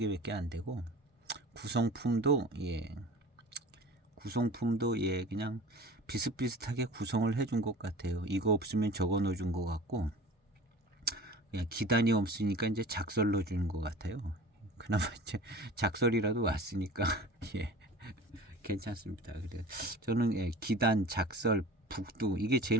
안 되고 구성품도 그냥 비슷비슷하게 구성을 해준 것 같아요. 이거 없으면 저거 넣어준 것 같고 그냥 기단이 없으니까 이제 작설 넣어준 것 같아요. 그나마 이제 작설이라도 왔으니까 괜찮습니다. 그래 저는 기단, 작설, 북두 이게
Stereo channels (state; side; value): normal; both; correlation 0.40